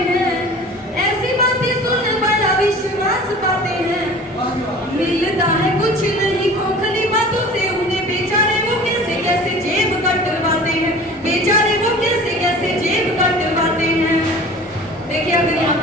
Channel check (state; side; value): normal; both; correlation 0.42